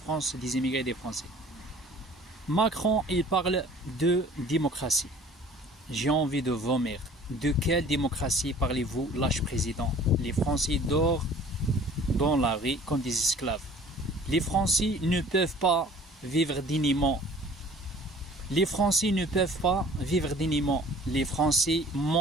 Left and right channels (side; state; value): both; normal; correlation 0.49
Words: des immigrés et des Français. Macron, il parle de démocratie. J'ai envie de vomir. De quelle démocratie parlez-vous, lâche président? Les Français dorment dans la rue comme des esclaves. Les Français ne peuvent pas vivre dignement. Les Français ne peuvent pas vivre dignement. Les Français